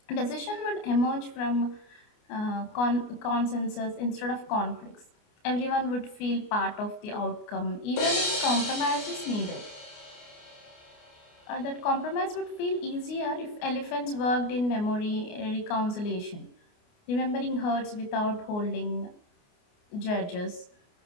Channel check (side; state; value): right; late; 29 ms